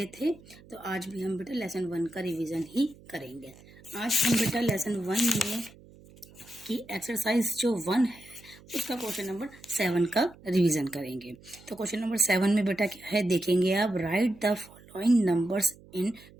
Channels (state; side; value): noise; right; hum, 23 dB below the sound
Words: थे, तो आज भी हम बेटा लेसन 1 का रिवीजन ही करेंगे. आज हम बेटा लेसन 1 में की एक्सरसाइज जो 1 है उसका क्वेश्चन नंबर 7 का रिवीजन करेंगे. तो क्वेश्चन नंबर 7 में बेटा क्या है देखेंगे आप. Right the following numbers in